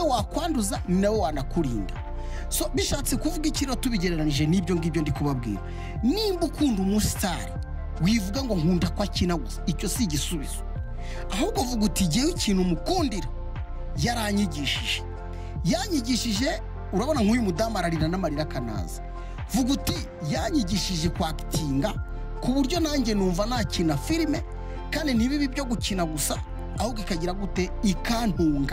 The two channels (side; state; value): both; identical; correlation 1.00